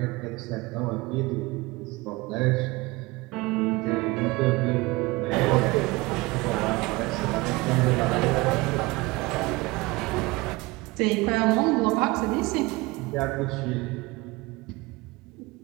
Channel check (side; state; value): left; quieter; 22.4 dB